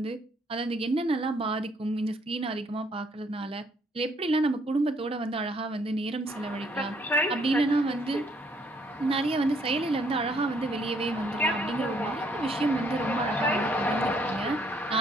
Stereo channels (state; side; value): normal; both; correlation 0.67